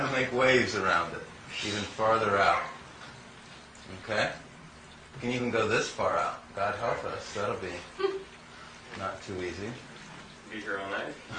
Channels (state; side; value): identical; both; correlation 1.00